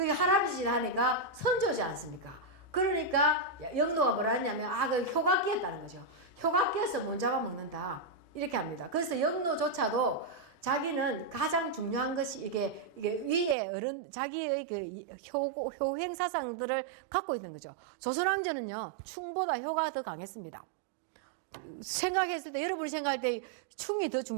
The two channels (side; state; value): left; drops out; at 13.6 s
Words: 할아버지다 하니까 선조지 않습니까? 그러니까 영노가 뭐라 했냐면 그 효가 끼었다는 거죠. 효가 끼어서 못 잡아먹는다 이렇게 합니다. 그래서 영노조차도 자기는 가장 중요한 것이 이게 위에 어른 자기의 그 효행 사상들을 갖고 있는 거죠. 조선왕조는요 충보다 효가 더 강했습니다. 생각했을 때 여러분이 생각할 때 충이 더